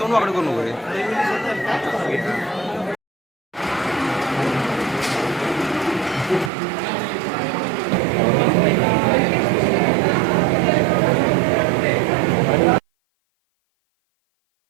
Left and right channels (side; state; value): left; drops out; at 6.5 s